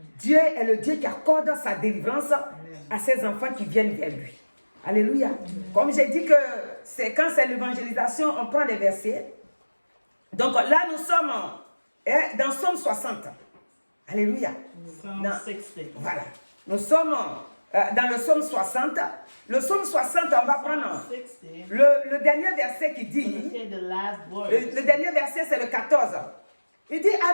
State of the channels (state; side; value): inverted; both; correlation -1.00